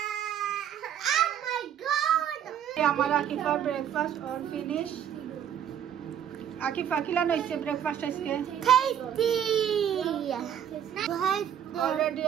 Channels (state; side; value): quieter; left; 9.4 dB